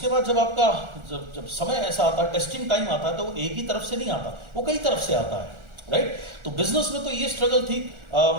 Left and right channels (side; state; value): left; late; 1.4 ms